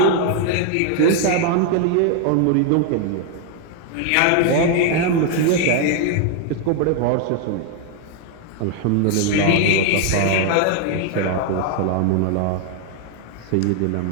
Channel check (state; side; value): different; both; correlation 0.01